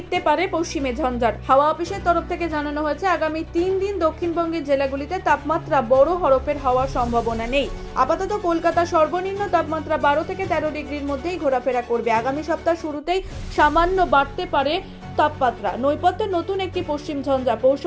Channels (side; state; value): both; identical; correlation 1.00